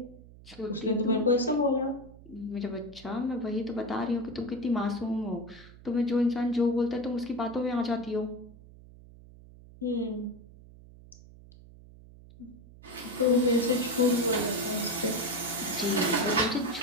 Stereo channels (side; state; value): right; noise; hum, 20 dB below the sound